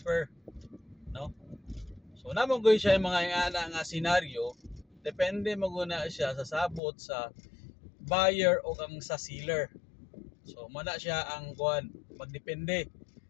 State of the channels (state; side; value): drops out; right; at 6.8 s